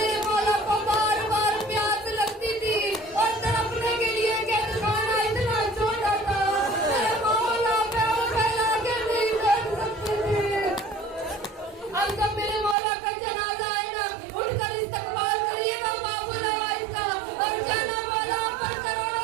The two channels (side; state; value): left; drops out; at 12.8 s